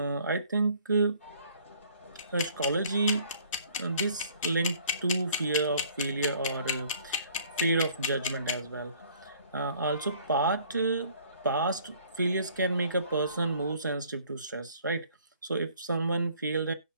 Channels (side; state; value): both; inverted; correlation -0.57